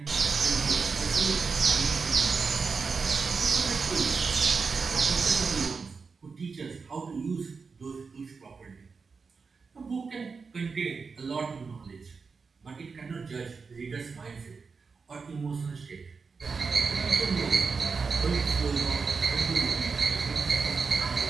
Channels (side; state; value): left; quieter; 4.9 dB